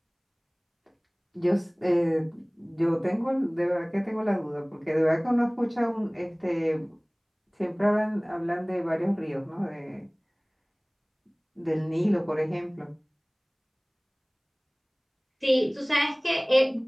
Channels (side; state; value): both; identical; correlation 1.00